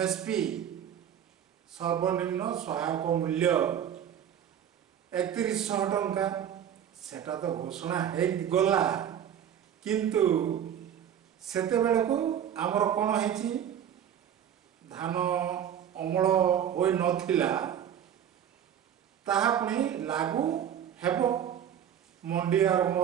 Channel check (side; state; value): left; quieter; 9.5 dB